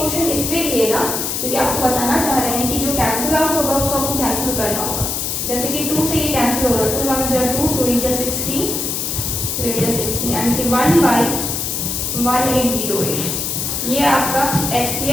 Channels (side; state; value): left; noise; hiss, 2 dB below the sound